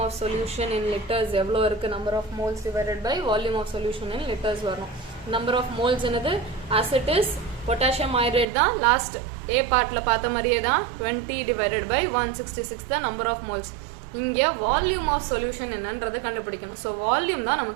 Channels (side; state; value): left; drops out; at 8.5 s